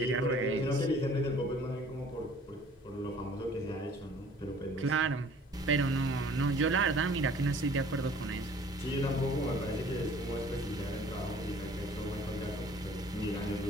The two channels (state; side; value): normal; both; correlation 0.52